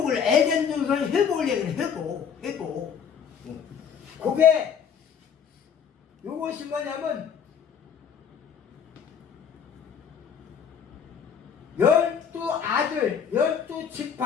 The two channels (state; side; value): quieter; right; 7.3 dB